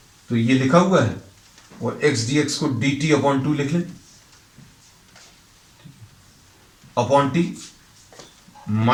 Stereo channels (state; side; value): identical; both; correlation 1.00